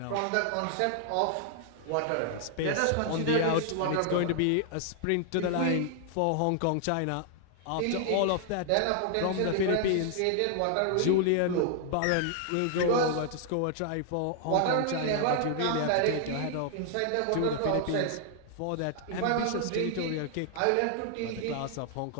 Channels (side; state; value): both; different; correlation 0.00